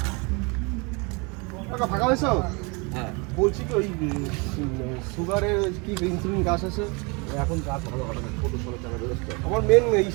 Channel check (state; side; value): quieter; left; 30.0 dB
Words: টাকা ফাঁকা হয়েছ? হ্যাঁ, বলছি কি ওই সুগারের কি ইনসুলিন গাছ আছে? এখন কাজ ভালো হবে না, ছোটো ছোটো টাকা ব্যবস্থা। আমার মেন